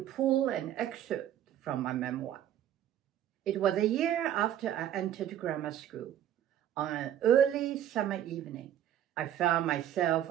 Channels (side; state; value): left; quieter; 11.1 dB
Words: an excerpt from my memoir. It was a year after I entered grammar school. On an early summer evening, I found myself